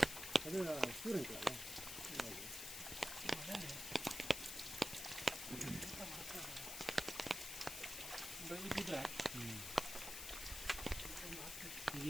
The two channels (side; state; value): left; noise; hiss, 5 dB below the sound